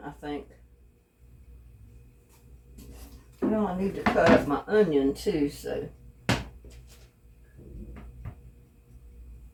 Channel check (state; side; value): identical; both; correlation 1.00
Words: I think. Well, I need to cut up my onion too, so.